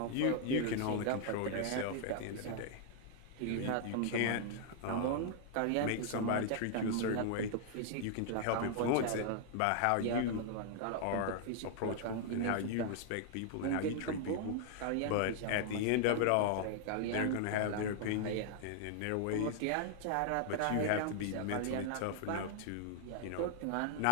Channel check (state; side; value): different; both; correlation 0.00